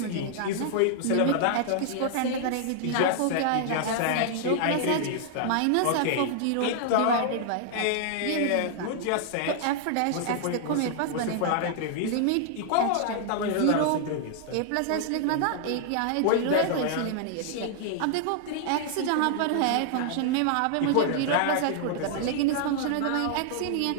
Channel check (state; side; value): different; both; correlation 0.00